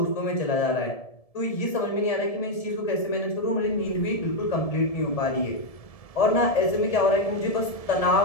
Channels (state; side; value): late; right; 1.7 ms